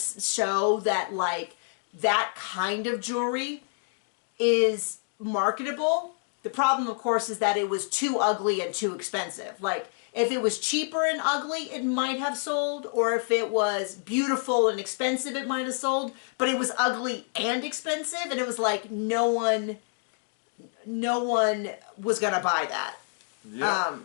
show that, like, that kind of jewelry is marketable. The problem, of course, is that it was too ugly and too expensive. Like, if it was cheaper and ugly, it might have sold, or if it was beautiful and expensive, it might have sold, but it was ugly and expensive, and it was like, no one was gonna buy that. Yeah.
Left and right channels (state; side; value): silent; right; 59 dB below the other